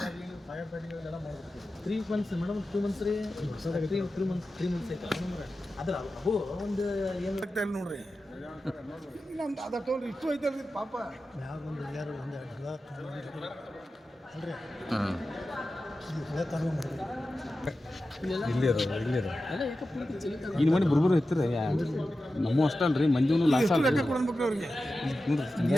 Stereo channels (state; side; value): normal; both; correlation 0.93